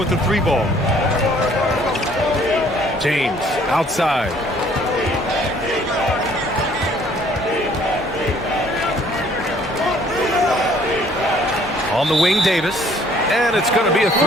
the 3-ball. James, outside. On the wing, Davis, and it's going to be a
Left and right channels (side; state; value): both; normal; correlation 0.59